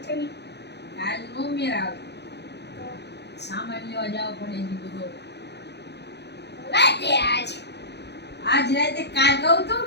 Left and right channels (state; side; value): late; right; 0.49 ms